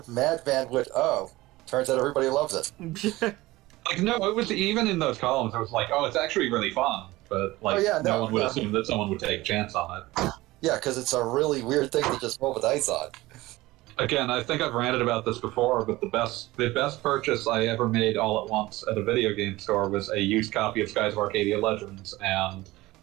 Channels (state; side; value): quieter; left; 19.0 dB